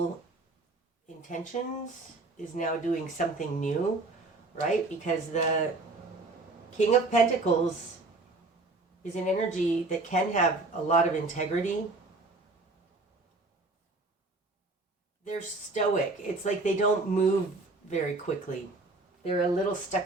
intentions is now doing something new, right? Because the King of Pentacles is an energy that can have a lot of integrity. They're stoic. It's like they don't move very quickly. They're a little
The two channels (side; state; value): left; quieter; 3.3 dB